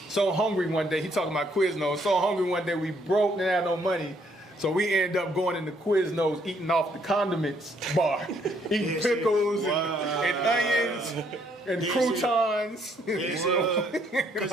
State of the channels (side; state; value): both; normal; correlation 0.68